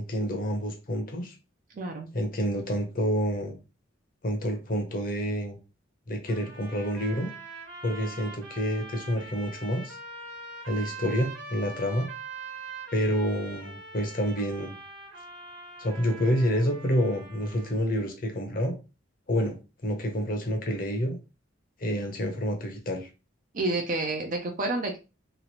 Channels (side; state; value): both; normal; correlation 0.51